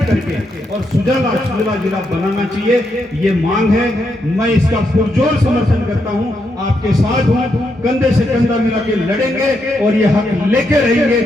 करके और सुजला जिला बनाना चाहिए। ये मांग है, मैं इसका पुरजोर समर्थन करता हूं, आपके साथ हूं, कंधे से कंधा मिला के लड़ेंगे और ये हक लेके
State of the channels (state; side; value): normal; both; correlation 0.81